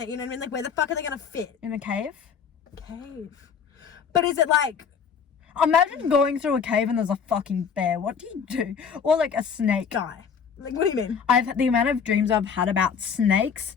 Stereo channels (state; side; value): quieter; right; 6.6 dB